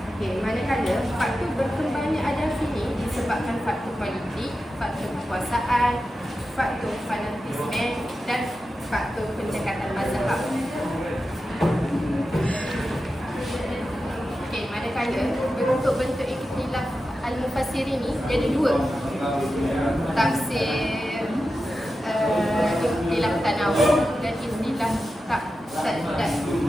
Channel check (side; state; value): both; normal; correlation 0.92